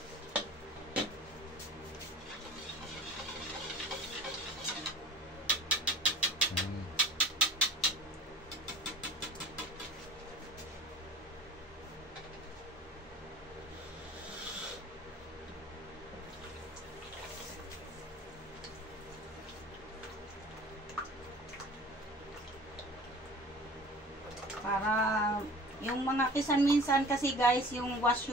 Para yung mga kisan minsan kasi guys, yung wash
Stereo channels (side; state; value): both; normal; correlation 0.43